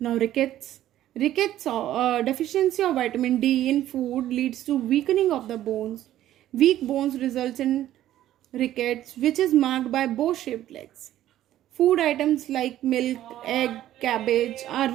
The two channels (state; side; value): quieter; left; 13.0 dB